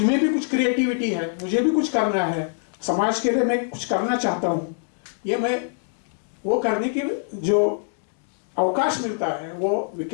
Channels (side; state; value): right; silent; 63 dB below the other